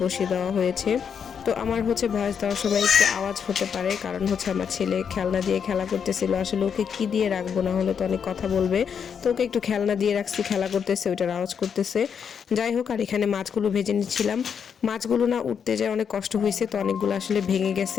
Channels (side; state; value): right; quieter; 7.2 dB